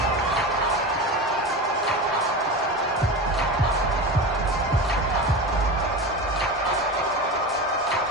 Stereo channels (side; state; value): both; normal; correlation 0.26